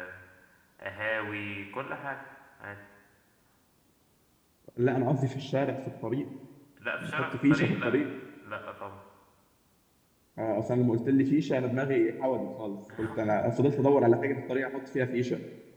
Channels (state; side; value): identical; both; correlation 1.00